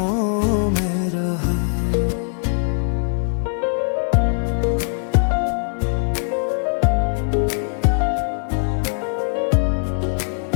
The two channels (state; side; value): silent; right; digital silence